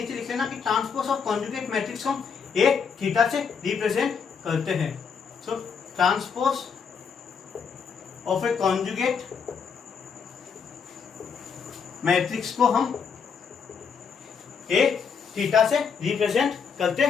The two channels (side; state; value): right; quieter; 6.2 dB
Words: लिख लेना कि ट्रांसपोज ऑफ कॉन्जुगेट मैट्रिक्स हम एक थीटा से रिप्रेजेंट करते हैं। So transpose of A conjugate matrix को हम एक थीटा से रिप्रेजेंट करते